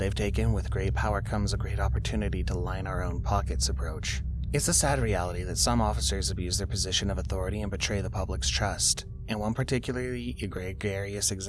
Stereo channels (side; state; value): both; identical; correlation 1.00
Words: taken with great power comes a great opportunity to line our own pockets approach. It's a sad reality that some officers abuse their position of authority and betray the public's trust. In one particularly egregious